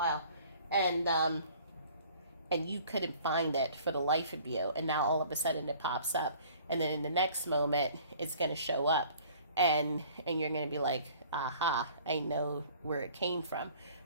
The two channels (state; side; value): inverted; both; correlation -0.52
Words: and you couldn't find it for the life of you, and now all of a sudden it pops up, and then in the next moment it's going to show up, and you're going to be like, aha, I know where it came from.